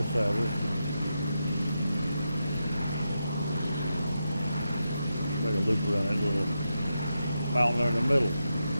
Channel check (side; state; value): both; inverted; correlation -0.87